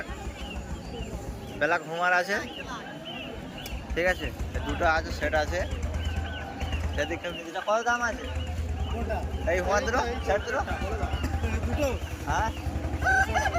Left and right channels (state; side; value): identical; both; correlation 1.00